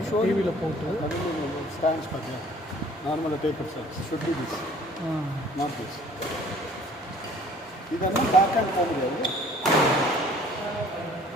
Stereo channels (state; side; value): normal; both; correlation 0.53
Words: டிவியில் போட்டு ஸ்டாண்ட்ஸ் பார்த்தீங்கன்னா நார்மலாக taper stands should be this not this. இதெல்லாம் பேக் ஹேண்ட் போக முடியாது.